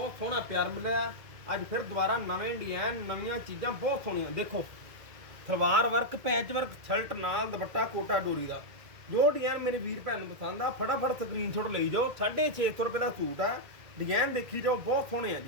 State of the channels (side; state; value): left; late; 2.0 ms